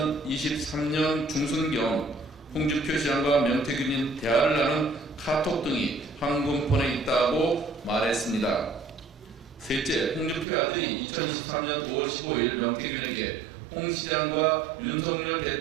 중순경 홍준표 시장과 명태균이 대화를 나눈 카톡 등이 황금폰에 있다고 말했습니다. 셋째, 홍준표 아들이 2023년 5월 15일 명태균에게 홍 시장과 윤석열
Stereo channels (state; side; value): drops out; left; at 10.5 s